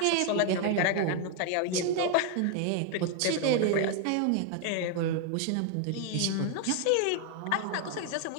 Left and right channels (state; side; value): different; both; correlation 0.00